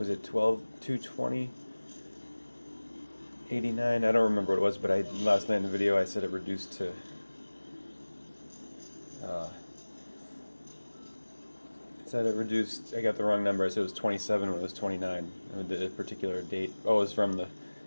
it 12/2/20? 89? I don't remember what it was, but last night in the video I said it reduced to I got the wrong number. I said it was 27 when it was 29. The particular date. Oh, it was from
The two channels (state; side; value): inverted; both; correlation -1.00